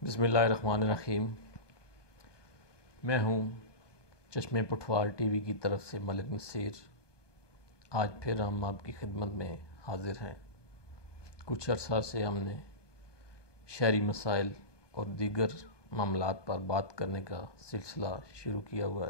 بسم اللہ الرحمن الرحیم۔ میں ہوں چشمہ پٹھوار ٹی وی کی طرف سے ملک نصیر۔ آج پھر ہم آپ کی خدمت میں حاضر ہیں۔ کچھ عرصہ سے ہم نے شہری مسائل اور دیگر معاملات پر بات کرنے کا سلسلہ شروع کیا ہوا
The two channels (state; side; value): late; right; 1.2 ms